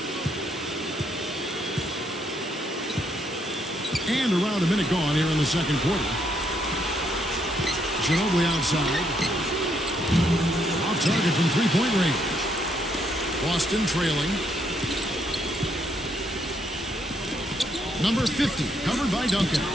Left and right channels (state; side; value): normal; both; correlation 0.74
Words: And around a minute gone here in the second quarter. Ginobili outside. Off target from three-point range. Boston trailing. Number 50, covered by Duncan.